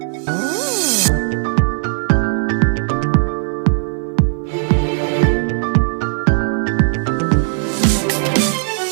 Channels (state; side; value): silent; left; 56 dB below the other